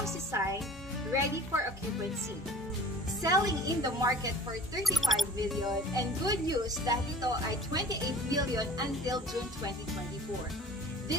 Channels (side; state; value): both; normal; correlation 0.45